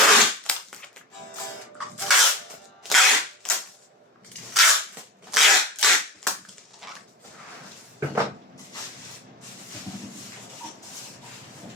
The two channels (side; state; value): both; normal; correlation 0.27